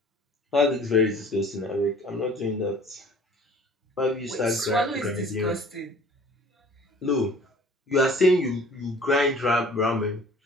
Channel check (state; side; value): normal; both; correlation 0.50